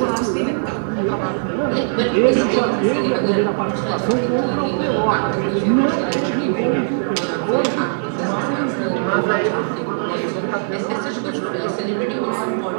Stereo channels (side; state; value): left; silent; digital silence